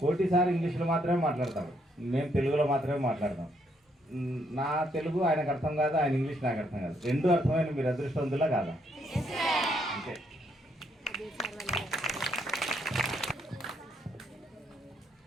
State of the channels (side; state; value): both; normal; correlation 0.73